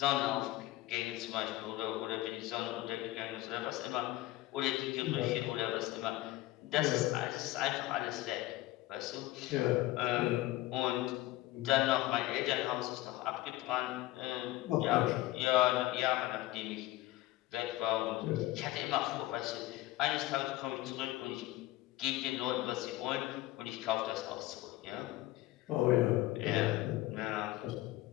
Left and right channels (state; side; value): quieter; right; 17.0 dB